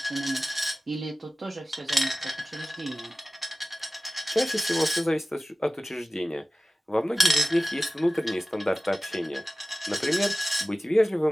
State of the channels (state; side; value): normal; both; correlation 0.96